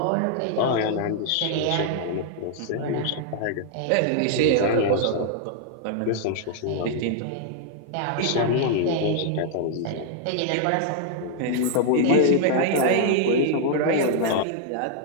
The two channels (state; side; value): different; both; correlation -0.01